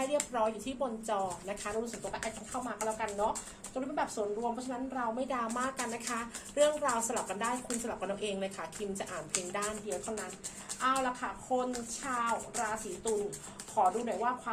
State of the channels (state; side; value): identical; both; correlation 1.00